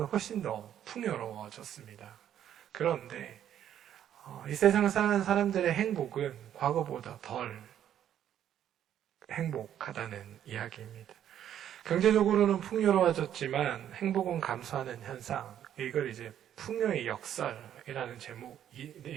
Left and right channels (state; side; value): quieter; left; 10.4 dB